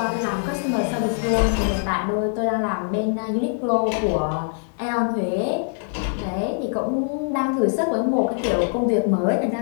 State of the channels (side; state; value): right; silent; 63 dB below the other